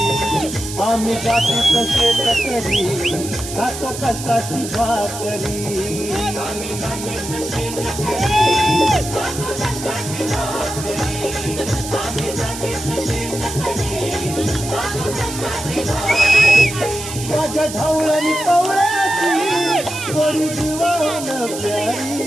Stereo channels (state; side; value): noise; right; hiss, 9 dB below the sound